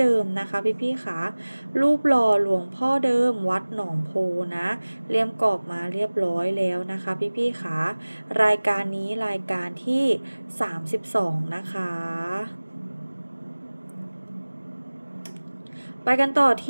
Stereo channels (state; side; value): inverted; both; correlation -1.00